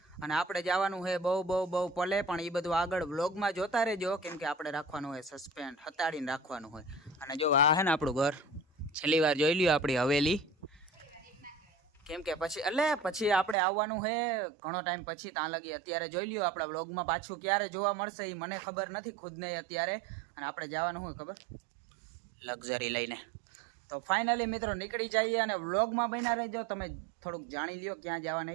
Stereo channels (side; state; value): left; drops out; at 13.6 s